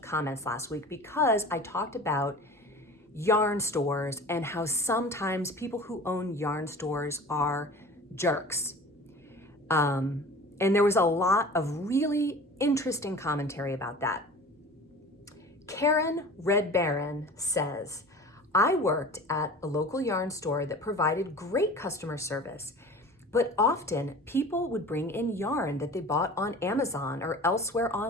comments last week because I talked about yarn stores and how sometimes people who own yarn stores are jerks. And there was a lot of really interesting commentary about that. Karen Red Baron says, I worked at a local yarn store that provided great customer service, but often people would bring in yarn that they bought on Amazon or elsewhere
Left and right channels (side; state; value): both; normal; correlation 0.39